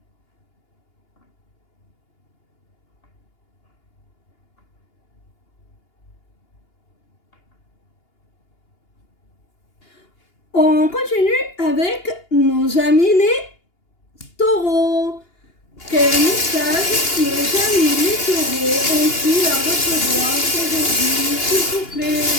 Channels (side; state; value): right; late; 2.8 ms